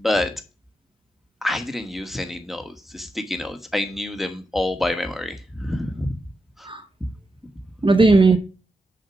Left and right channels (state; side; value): normal; both; correlation 0.86